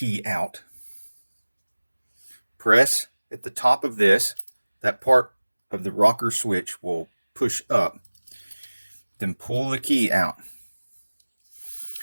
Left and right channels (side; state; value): both; inverted; correlation -1.00